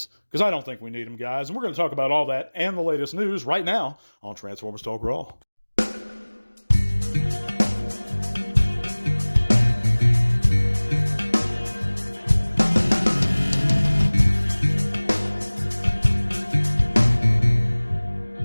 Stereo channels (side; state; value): both; inverted; correlation -1.00